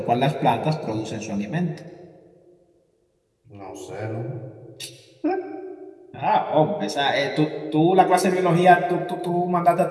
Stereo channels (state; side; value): identical; both; correlation 1.00